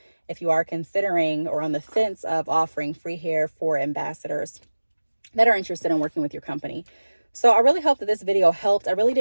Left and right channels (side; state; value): both; inverted; correlation -1.00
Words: if you are considering or on the fence of offering free hair for ambassadors that are interested in working with your company. So I really hope that this video helped. I really